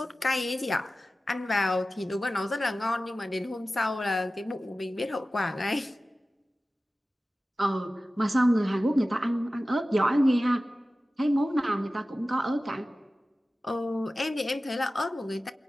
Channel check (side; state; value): both; normal; correlation 0.96